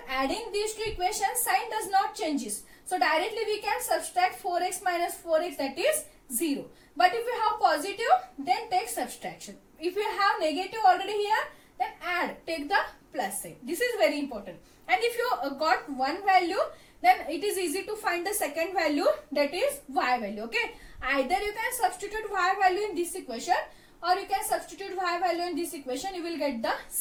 adding these two equations, sign does not changes. So directly we can subtract 4x minus 4x, that is 0. But if you have positive, then take subtraction. If you have negative already here, then add, take the plus sign. This is very important. And if you got one value, then it is easy to find the second value, that is y value. Okay, either you can substitute y value in this equation or you can substitute y value in this equation, you will get the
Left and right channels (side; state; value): both; identical; correlation 1.00